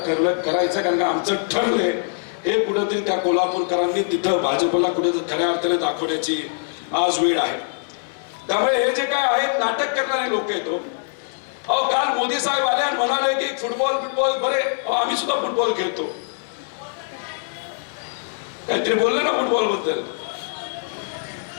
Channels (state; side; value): silent; right; 64 dB below the other